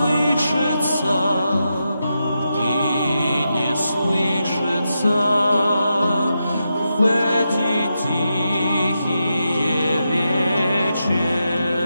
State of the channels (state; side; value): inverted; both; correlation -0.86